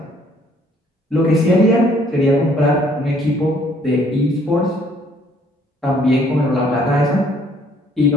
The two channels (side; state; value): both; normal; correlation 0.62